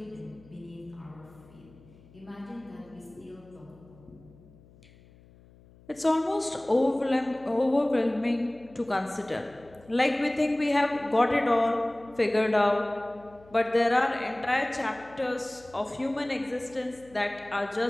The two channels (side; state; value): left; noise; hum, 25 dB below the sound